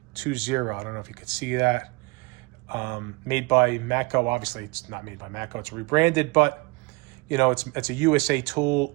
I don't know if you could see that. Made by Matco. Obviously, it's not made by Matco. It's rebranded, but you know, it's a USA tool.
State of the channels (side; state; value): left; quieter; 26.1 dB